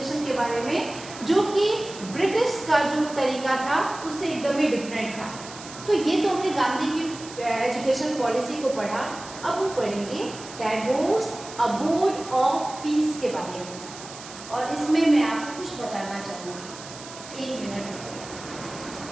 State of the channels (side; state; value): right; noise; hiss, 15 dB below the sound